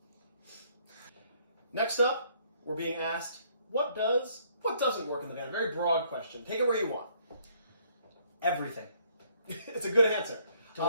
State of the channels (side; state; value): both; inverted; correlation -0.65